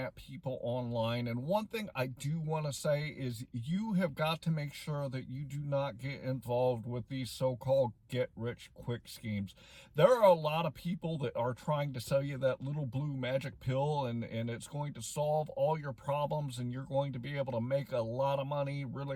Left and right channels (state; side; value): identical; both; correlation 1.00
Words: people online, and one thing I do want to say is you have got to make sure that you do not get involved with these so-called get-rich-quick schemes. There are a lot of people that are trying to sell you that little blue magic pill, and it's going to solve all your problems, and you're going to be able to make a lot of money